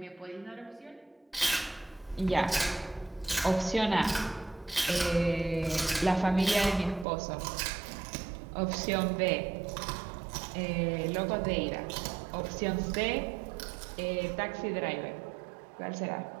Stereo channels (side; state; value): left; drops out; at 7.1 s